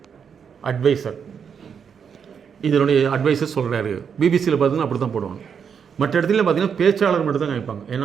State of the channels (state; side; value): quieter; left; 7.0 dB